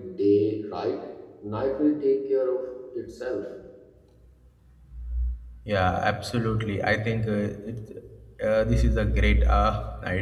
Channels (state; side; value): identical; both; correlation 1.00